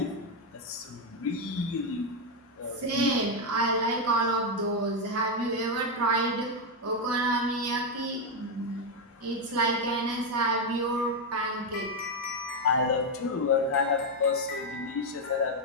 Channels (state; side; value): normal; both; correlation 0.04